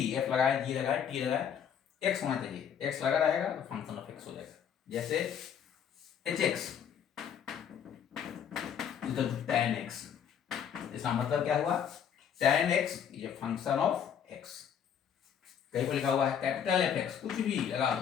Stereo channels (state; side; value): quieter; right; 8.4 dB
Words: f लगाए, g लगाए, t लगाए, x होना चाहिए। x लगा रहेगा तो फंक्शन ऑफ x हो जाएगा। जैसे hx equal to tan x, इसका मतलब क्या हुआ? tan x is a function of x। कहीं पर लिखा हुआ है कैपिटल fx, कुछ भी लगा